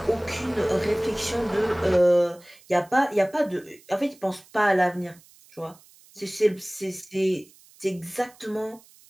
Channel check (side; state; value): right; noise; hiss, 26 dB below the sound